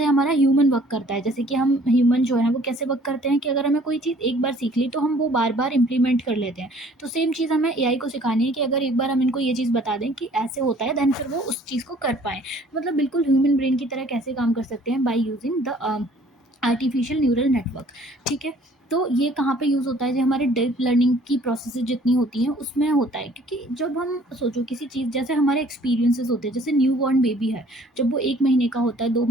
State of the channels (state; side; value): normal; both; correlation 0.56